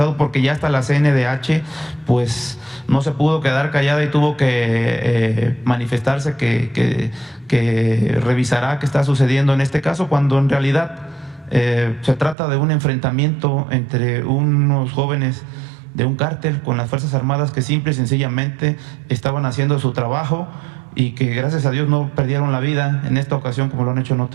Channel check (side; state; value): left; drops out; at 12.4 s